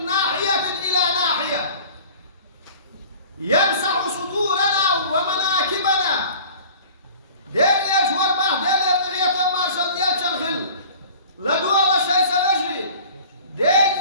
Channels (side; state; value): both; inverted; correlation -0.44